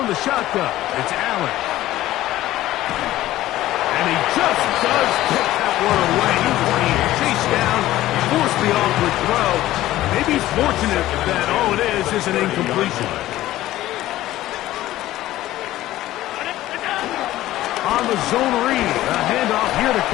the shotgun, it's Allen. And he just does get that one away. He's being chased down, forced the awkward throw. Maybe he's fortunate that all it is an incompletion. On the zone read, a handoff here to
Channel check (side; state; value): right; quieter; 15.1 dB